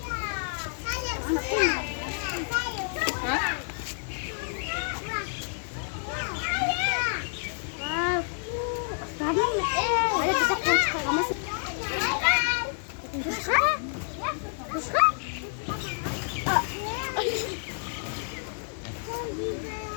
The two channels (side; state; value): right; silent; digital silence